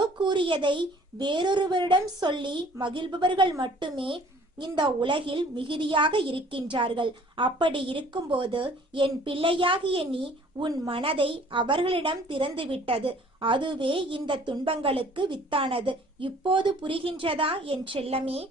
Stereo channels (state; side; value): normal; both; correlation 0.54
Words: கூறியதை வேறொருவரிடம் சொல்லி மகிழ்பவர்கள் மட்டுமே இந்த உலகில் மிகுதியாக இருக்கின்றார்கள். அப்படி இருக்கும்போது என் பிள்ளையாகிய நீ உன் மனதை அவர்களிடம் திறந்துவிட்டது. அதுவே இந்த துன்பங்களுக்கு வித்தானது. இப்போது புரிகின்றதா என் செல்லமே?